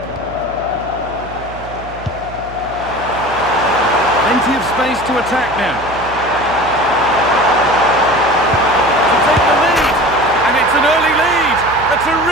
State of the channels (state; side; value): noise; right; hum, 15 dB below the sound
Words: Plenty of space to attack now. To take the lead, and it's an early lead. A